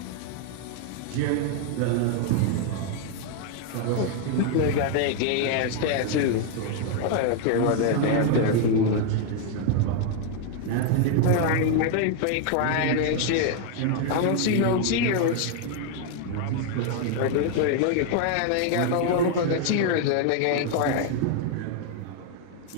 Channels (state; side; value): different; both; correlation 0.00